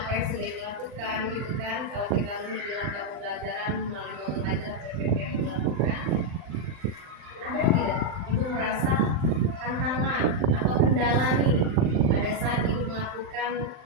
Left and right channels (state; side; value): late; left; 39 ms